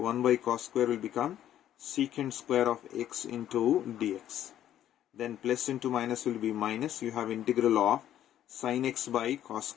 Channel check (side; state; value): right; quieter; 11.4 dB